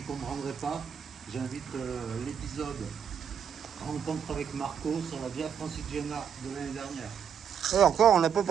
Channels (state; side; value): quieter; left; 7.7 dB